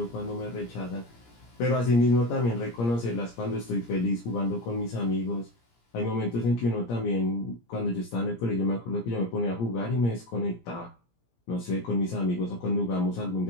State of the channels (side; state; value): right; late; 17 ms